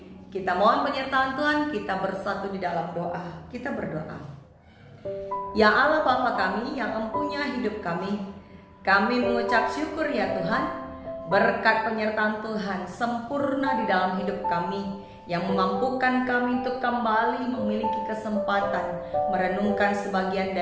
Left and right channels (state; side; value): identical; both; correlation 1.00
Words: kita mohon penyertaan Tuhan, kita bersatu di dalam doa. Kita berdoa. Ya Allah Bapa kami yang empunya hidup kami mengucap syukur ya Tuhan, berkat penyertaan Tuhan sempurna di dalam hidup kami, yang memampukan kami untuk kembali memiliki kesempatan merenungkan sebagian